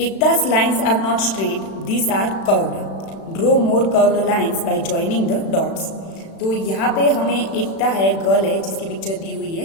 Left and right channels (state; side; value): late; right; 36 ms